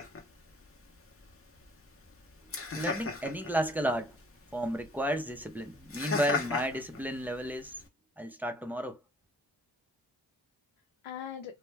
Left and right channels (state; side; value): normal; both; correlation 0.56